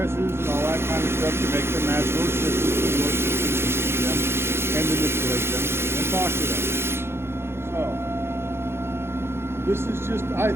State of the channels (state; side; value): late; left; 0.12 ms